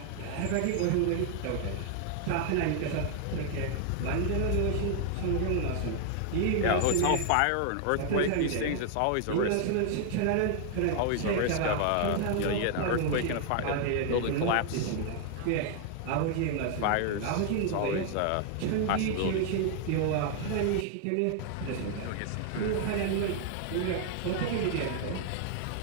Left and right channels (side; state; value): both; different; correlation 0.00